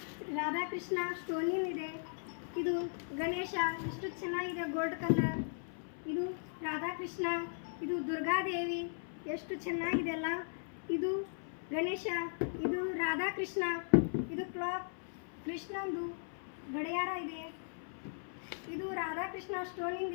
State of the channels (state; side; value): silent; right; 53 dB below the other